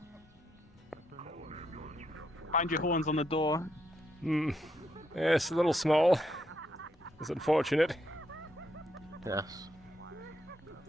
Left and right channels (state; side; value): normal; both; correlation 0.78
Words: Find your horns on the door. Yes, a little small. It's unfortunate. Yes.